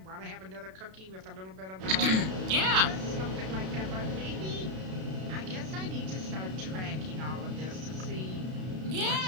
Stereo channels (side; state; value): left; late; 32 ms